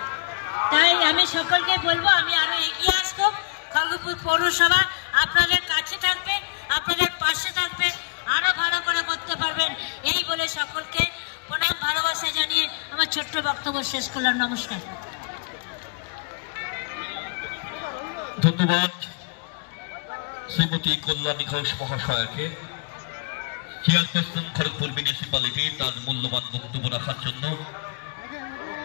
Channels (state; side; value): quieter; right; 34.6 dB